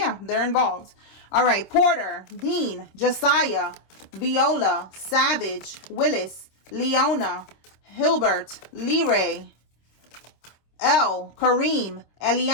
they're involved. All right. Porter, Dean, Josiah, Viola, Savage, Willis, Leona, Hilbert, Leray, Elle, Kareem,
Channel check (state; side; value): late; right; 26 ms